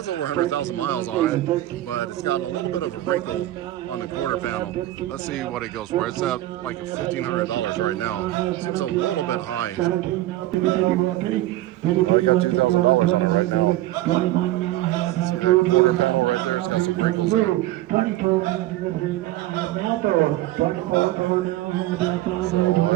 over 100,000 miles on it, but it's got a little bit of a wrinkle on the quarter panel. Let's see what it goes for. It's at like $1,500 right now. Seems a little bit high. I got $2,000 on it right now. See that quarter panel right there? It's got some wrinkles in it. So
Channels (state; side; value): quieter; left; 15.6 dB